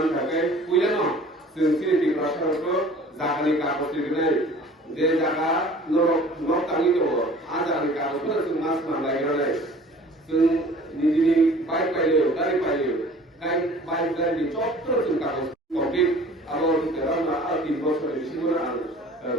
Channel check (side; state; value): both; normal; correlation 0.48